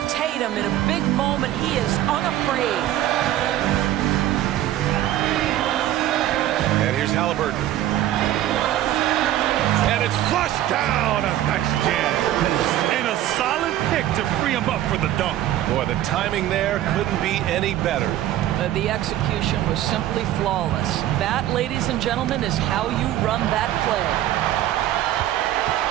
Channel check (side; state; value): left; quieter; 13.1 dB